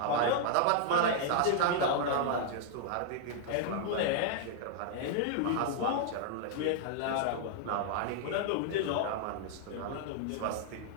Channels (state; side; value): different; both; correlation -0.01